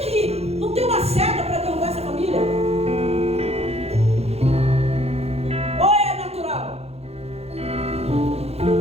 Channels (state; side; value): late; left; 0.30 ms